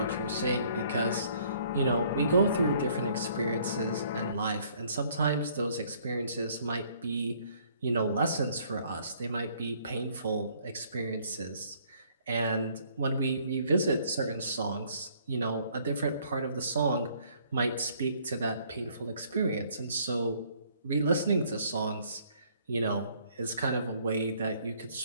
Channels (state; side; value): inverted; both; correlation -0.62